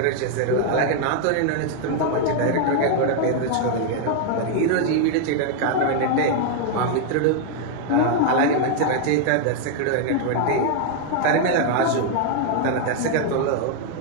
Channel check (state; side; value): different; both; correlation 0.00